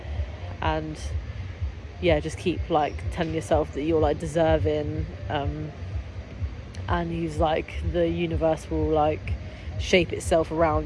yeah, just keep like telling yourself that you're like deserving, and he's like, the universe will like shape itself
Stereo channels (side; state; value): both; identical; correlation 1.00